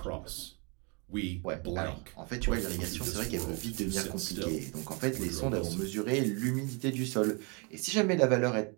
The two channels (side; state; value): left; quieter; 33.0 dB